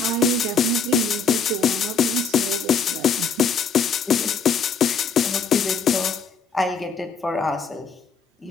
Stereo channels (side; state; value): right; quieter; 5.0 dB